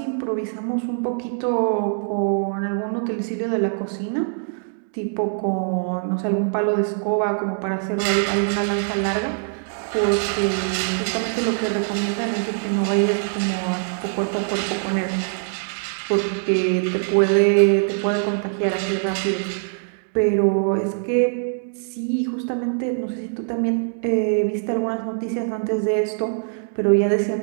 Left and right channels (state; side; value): silent; left; digital silence